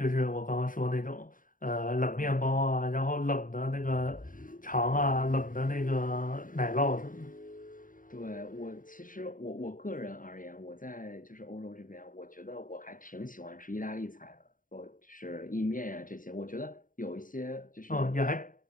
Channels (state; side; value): late; right; 0.39 ms